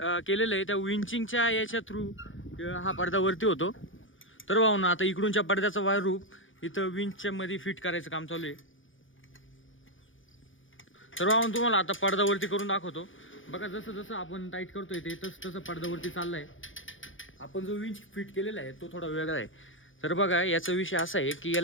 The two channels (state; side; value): late; right; 0.57 ms